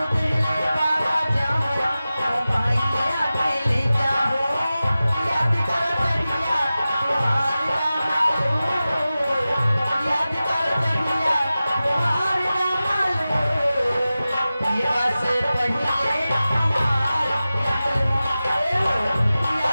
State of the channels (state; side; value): inverted; both; correlation -0.95